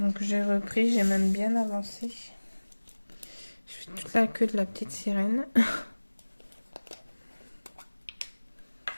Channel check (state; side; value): inverted; both; correlation -1.00